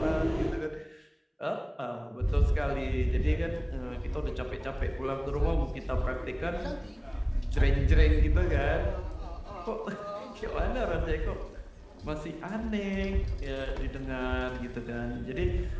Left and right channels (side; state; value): both; identical; correlation 1.00